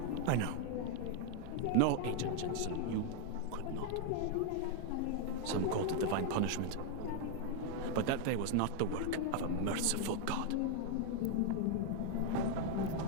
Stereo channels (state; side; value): different; both; correlation 0.00